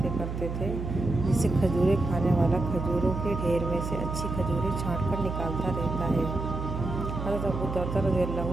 کرتے تھے جیسے کھجوریں کھانے والا کھجوروں کے ڈھیر میں سے اچھی کھجوریں چھانٹ کر نکالتا رہتا ہے۔ حضرت ابو درداء رضی اللہ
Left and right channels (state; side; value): noise; right; hum, 5 dB below the sound